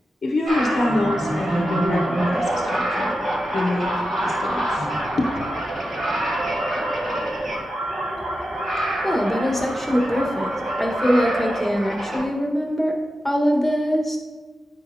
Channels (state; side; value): normal; both; correlation 0.90